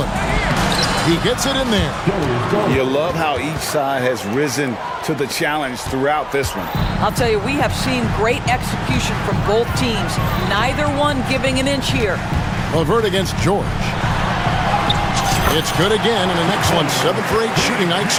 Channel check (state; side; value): identical; both; correlation 1.00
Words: He gets it in there. You love how each side has risen to the challenge throughout this one. I'll tell you, we have seen great execution from both teams. Neither one giving an inch here. Levert against George. It's good again, and an excellent 7 for 8 shooting night